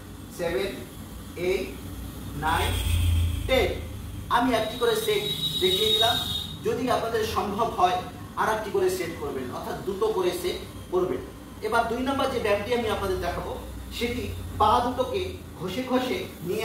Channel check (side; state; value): both; identical; correlation 1.00